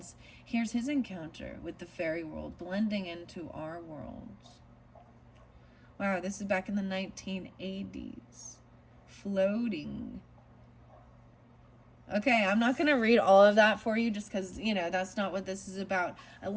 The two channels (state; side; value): identical; both; correlation 1.00